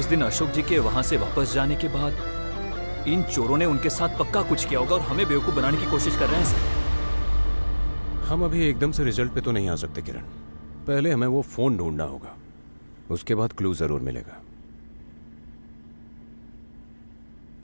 दिन अशोक जी के वहां से वापस जाने के बाद इन चोरों ने उनके साथ पक्का कुछ किया होगा और हमें बेवकूफ बनाने की कोशिश कर रहे हैं सर। हम अभी एकदम से रिजल्ट पे तो नहीं आ सकते किरण। पहले हमें वो फोन ढूंढना होगा, उसके बाद क्लू जरूर मिलेगा।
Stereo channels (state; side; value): inverted; both; correlation -1.00